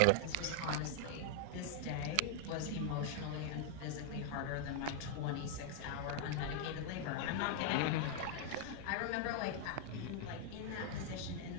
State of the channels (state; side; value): different; both; correlation 0.00